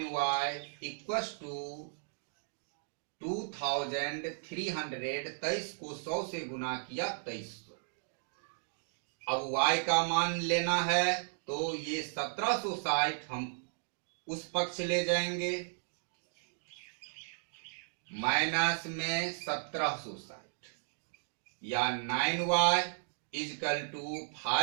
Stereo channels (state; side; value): silent; left; digital silence